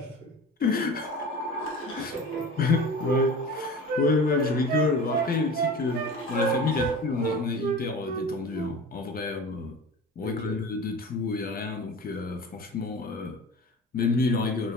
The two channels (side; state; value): both; normal; correlation 0.36